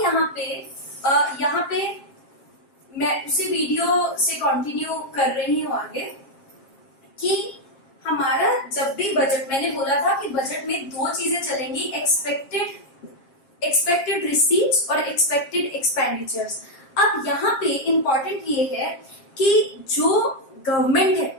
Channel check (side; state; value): right; late; 7.4 ms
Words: पे मैं उसी वीडियो से कंटिन्यू कर रही हूँ आगे कि हमारा जब भी बजट, मैंने बोला था कि बजट में दो चीजें चलेंगी, एक्सपेक्टेड रिसीट्स और एक्सपेक्टेड एक्सपेंडिचर्स। अब यहाँ पे इंपॉर्टेंट ये है कि जो गवर्नमेंट है